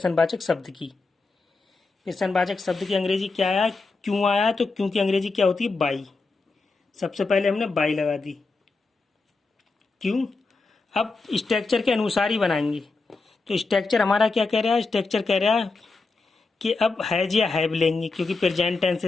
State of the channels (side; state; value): right; quieter; 3.8 dB